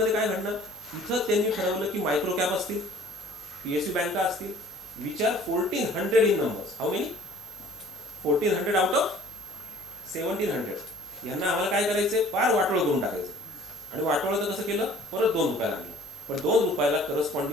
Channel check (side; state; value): both; normal; correlation 0.51